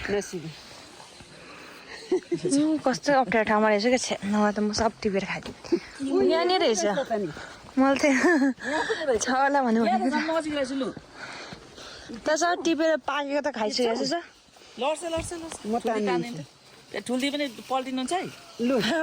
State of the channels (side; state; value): both; identical; correlation 1.00